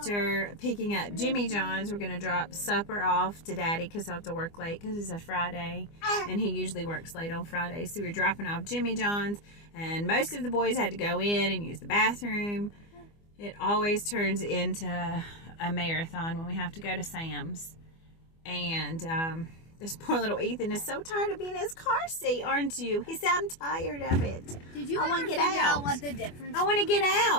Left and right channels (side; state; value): right; late; 24 ms